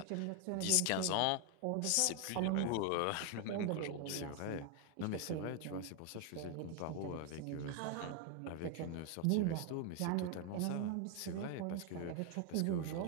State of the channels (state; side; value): different; both; correlation 0.01